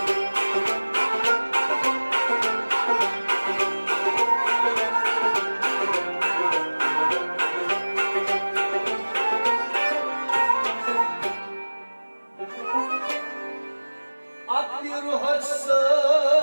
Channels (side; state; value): both; inverted; correlation -1.00